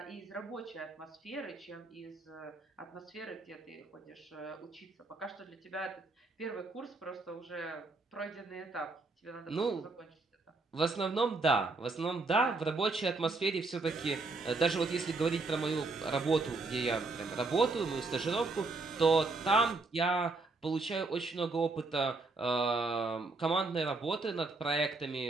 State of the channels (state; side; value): quieter; left; 3.6 dB